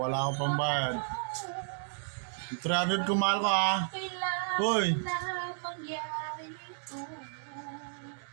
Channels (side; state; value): left; silent; digital silence